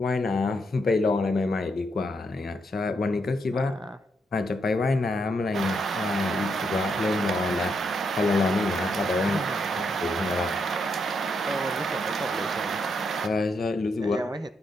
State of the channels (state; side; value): normal; both; correlation 0.79